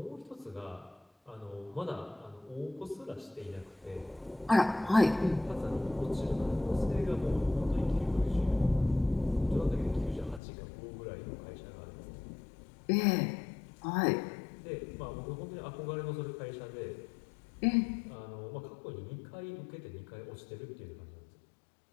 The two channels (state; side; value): drops out; right; at 10.4 s